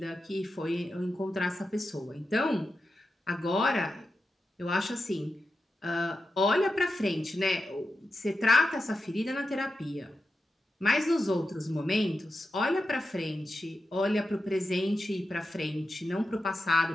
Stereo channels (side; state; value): both; normal; correlation 0.90